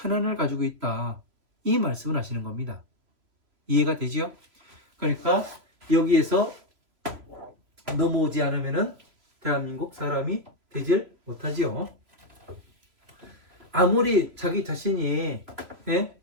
가지고 있다. 이 말씀을 하시는 겁니다. 이해가 되지요? 그러니까 여기에서 넘어오지 않으면은 대한민국 사람이 되질 못하지요. 아무리 자기 자신이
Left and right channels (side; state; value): left; late; 3.0 ms